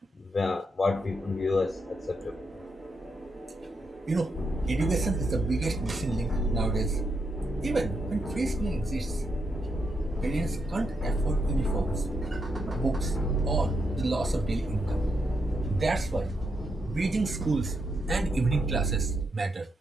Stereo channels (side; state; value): both; normal; correlation 0.81